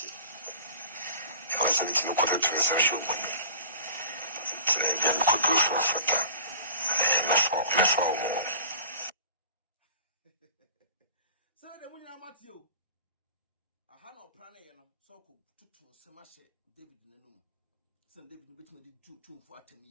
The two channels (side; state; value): both; inverted; correlation -0.41